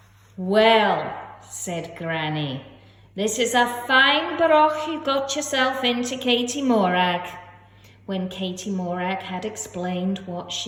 "Well," said Granny, "this is a fine broch you got yourself into, Katie Morag," when Katie Morag had explained what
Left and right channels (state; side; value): identical; both; correlation 1.00